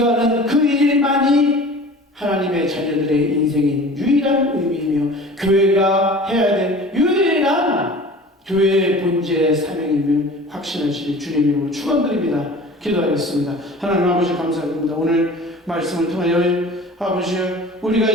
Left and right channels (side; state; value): both; normal; correlation 0.42